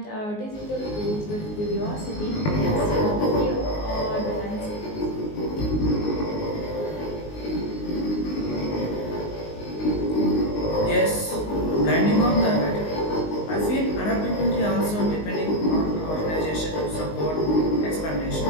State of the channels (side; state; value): right; late; 19 ms